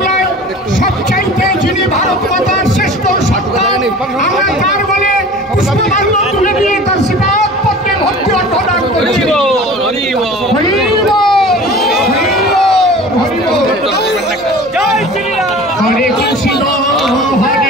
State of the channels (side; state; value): both; normal; correlation 0.41